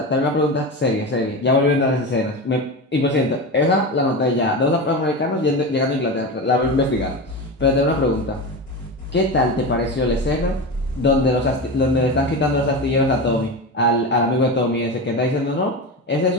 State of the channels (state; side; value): normal; both; correlation 0.23